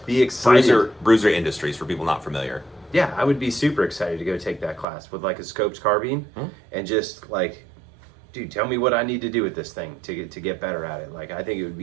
be excited. Bruiser Industries, for people not familiar. Yeah, I would be super excited to go take that class with like a scopes carbine and just like, dude, tell me what I need to do with this thing to get better at it. Like, I think it would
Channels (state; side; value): drops out; left; at 4.9 s